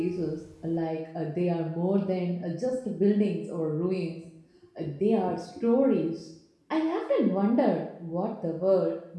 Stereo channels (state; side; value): identical; both; correlation 1.00